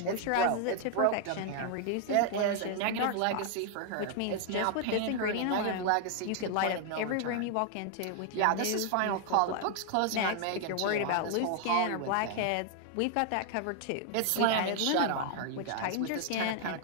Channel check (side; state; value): both; different; correlation 0.00